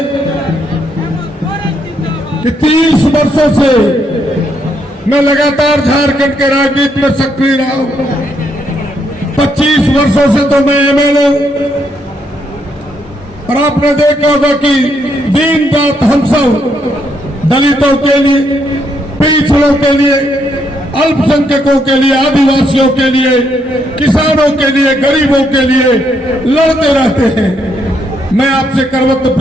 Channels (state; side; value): normal; both; correlation 0.75